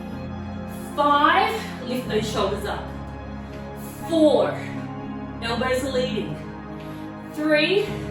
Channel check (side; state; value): both; identical; correlation 1.00